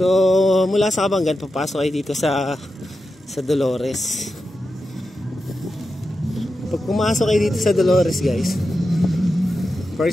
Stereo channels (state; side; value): normal; both; correlation 0.90